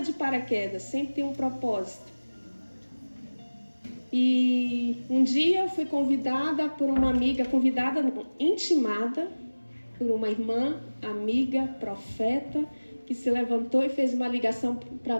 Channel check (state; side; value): inverted; both; correlation -1.00